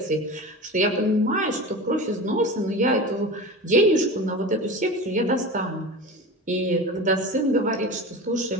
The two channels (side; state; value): both; normal; correlation 0.30